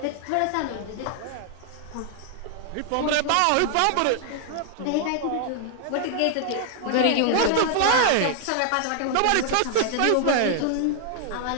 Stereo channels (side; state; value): both; different; correlation 0.00